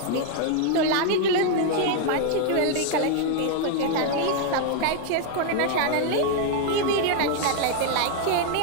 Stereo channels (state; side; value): different; both; correlation 0.00